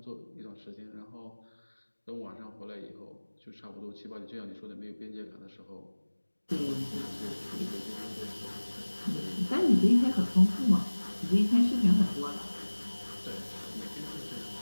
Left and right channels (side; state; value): both; inverted; correlation -1.00